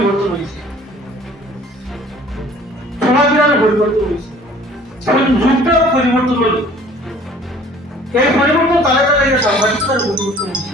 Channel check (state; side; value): normal; both; correlation 0.51